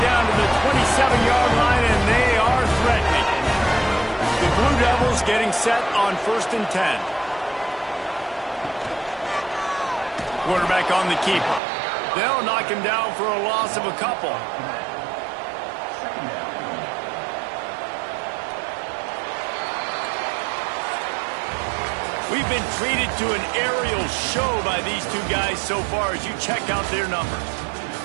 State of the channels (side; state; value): left; drops out; at 11.6 s